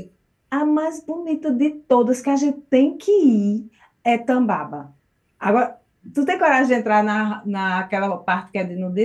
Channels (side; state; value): both; identical; correlation 1.00